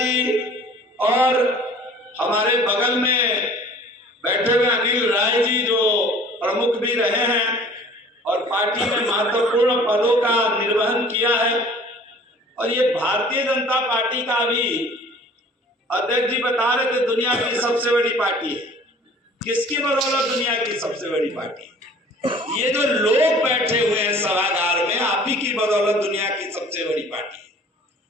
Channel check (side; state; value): both; normal; correlation 0.49